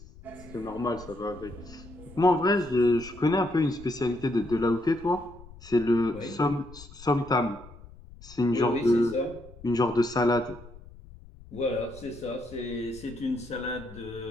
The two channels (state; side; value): noise; left; rumble, 19 dB below the sound